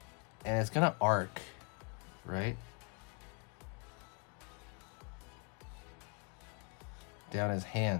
And it's gonna arc, right? Down his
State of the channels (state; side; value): quieter; right; 36.8 dB